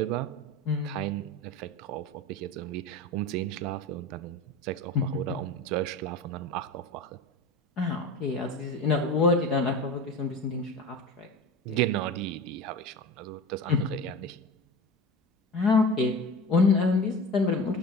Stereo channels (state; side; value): normal; both; correlation 0.32